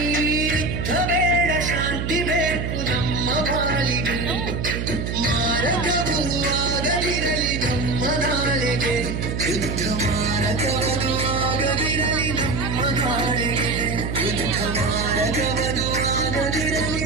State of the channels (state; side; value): noise; right; hum, 3 dB below the sound